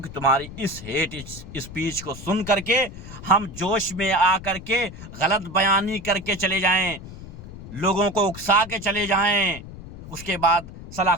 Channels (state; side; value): noise; left; rumble, 14 dB below the sound